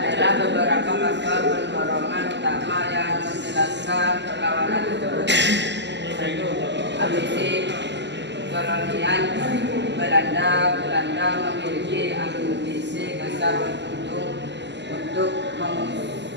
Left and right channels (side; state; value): left; late; 0.51 ms